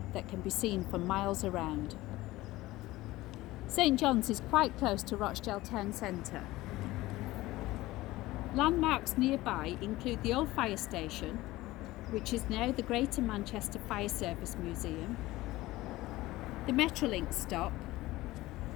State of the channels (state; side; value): quieter; right; 18.1 dB